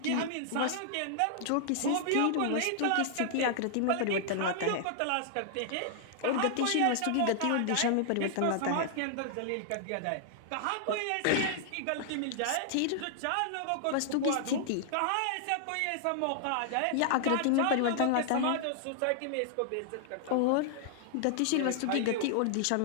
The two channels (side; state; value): both; different; correlation -0.01